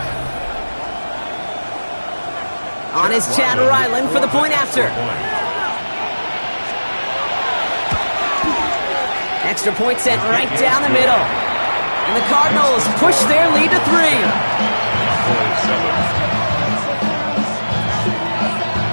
On is Chad Ryland for the point after. Extra point sent right down the middle. And the Cardinals push their lead to 3.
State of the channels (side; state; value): both; inverted; correlation -1.00